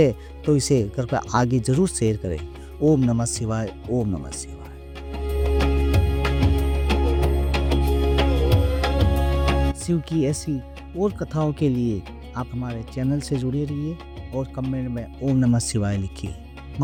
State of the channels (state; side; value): identical; both; correlation 1.00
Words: तो इसे कृपया आगे जरूर शेयर करें। ओम नमः शिवाय, ओम नमः शिवाय। शिव की ऐसी और कथाओं के लिए आप हमारे चैनल से जुड़े रहिए और कमेंट में ओम नमः शिवाय लिखिए।